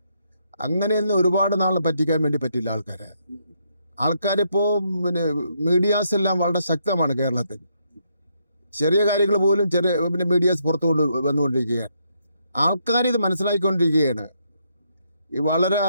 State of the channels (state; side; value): inverted; both; correlation -0.76